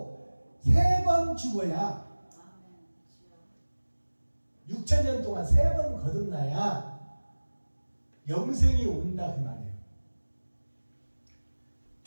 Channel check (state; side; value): inverted; both; correlation -1.00